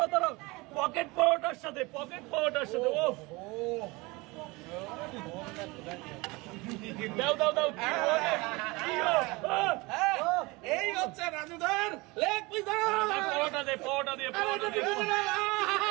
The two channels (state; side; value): quieter; left; 24.1 dB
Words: দাঁড়াও, পকেট পাওয়াটার সাথে ও দাও দাও দাও, এই হচ্ছে রাজুদার লেগ পিস। পাওয়াটা